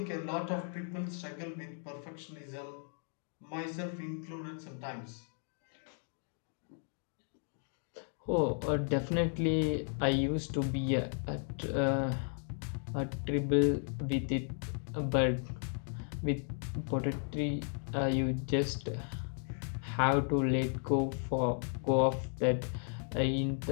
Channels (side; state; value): right; silent; 54 dB below the other